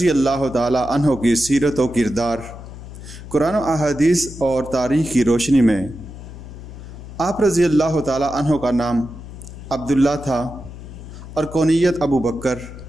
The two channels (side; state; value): left; noise; hum, 14 dB below the sound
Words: اللہ تعالی عنہ کی سیرت و کردار۔ قرآن و احادیث اور تاریخ کی روشنی میں آپ رضی اللہ تعالی عنہ کا نام عبداللہ تھا اور کونیت ابوبکر۔